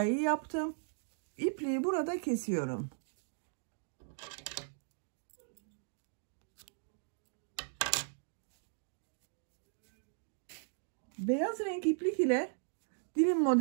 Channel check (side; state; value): left; silent; digital silence